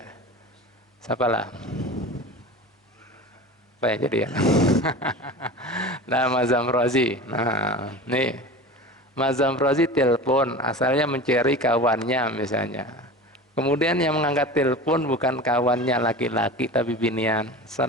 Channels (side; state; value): both; normal; correlation 0.34